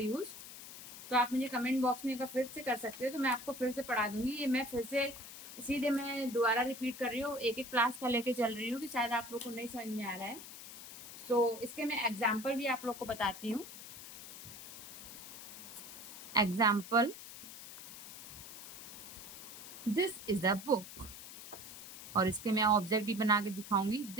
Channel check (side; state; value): left; noise; hiss, 12 dB below the sound